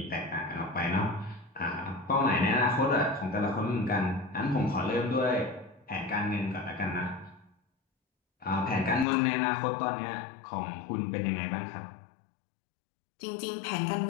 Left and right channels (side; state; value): right; drops out; at 9.1 s